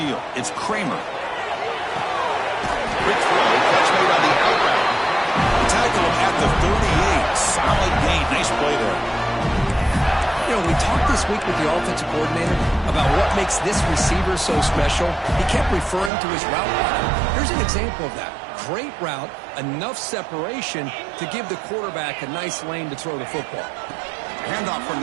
it's Kramer. Quick throw, catch made on the out route. Tackle him at the 38. Solid gain. Nice play there. You know, we talked this week with the offensive coordinator about what makes this receiver so special. He kept referring to his route running. Here's an example of that. Great route, enough separation to give the quarterback a nice lane to throw the football. Handoff from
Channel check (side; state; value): left; drops out; at 16.1 s